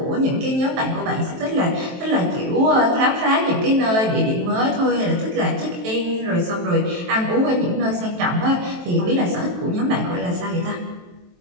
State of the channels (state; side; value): late; left; 23 ms